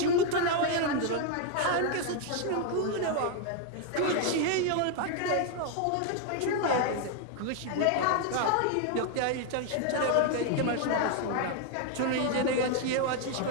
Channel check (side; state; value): both; different; correlation 0.01